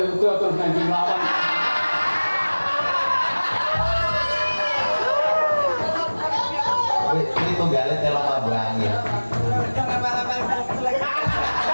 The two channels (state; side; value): inverted; both; correlation -1.00